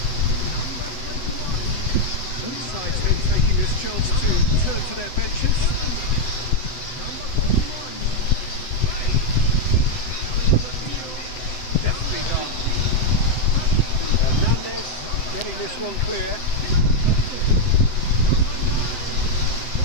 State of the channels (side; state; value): right; late; 7.8 ms